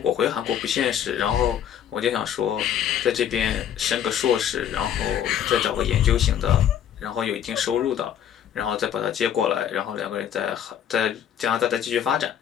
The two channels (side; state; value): right; quieter; 9.6 dB